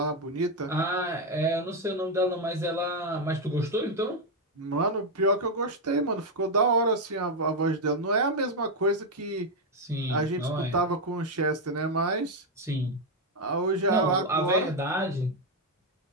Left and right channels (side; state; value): both; normal; correlation 0.04